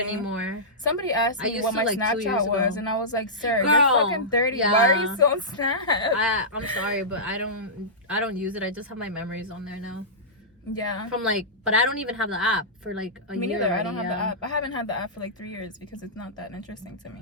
Somebody asked me what my Snapchat was, and I was like, "Sir, girl, you're fucking 30. Yeah. Why are you still on Snap?" I'm sorry, but I don't use it. I just have my memories on there now. Yeah. From like, but I don't even have the app for like a year. Me neither. Already, I don't have the app. I haven't had the app for like 3 years because it's not that interesting to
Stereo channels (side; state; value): both; normal; correlation -0.16